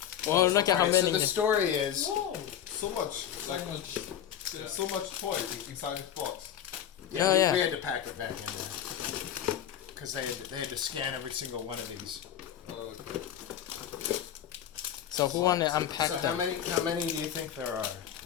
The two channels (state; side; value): quieter; right; 9.9 dB